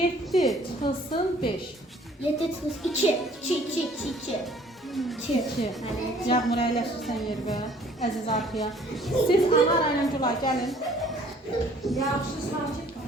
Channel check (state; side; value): normal; both; correlation 0.56